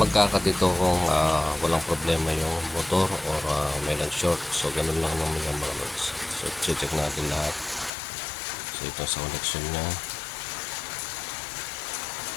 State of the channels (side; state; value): right; drops out; at 7.9 s